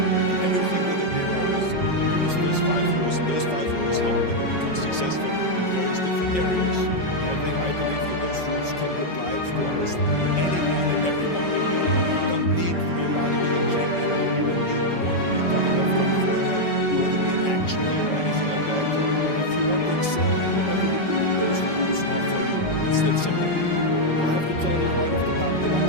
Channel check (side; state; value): right; late; 5.3 ms